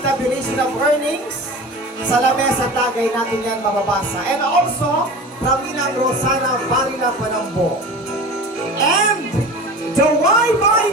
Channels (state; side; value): normal; both; correlation 0.34